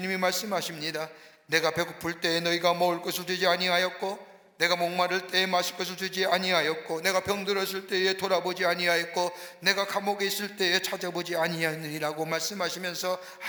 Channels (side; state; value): both; identical; correlation 1.00